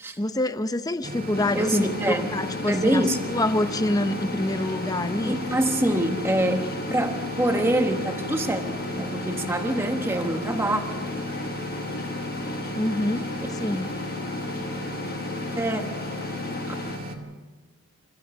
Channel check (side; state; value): both; normal; correlation 0.66